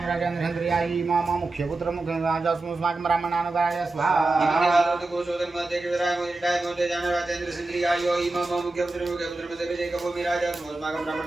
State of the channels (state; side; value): quieter; left; 3.1 dB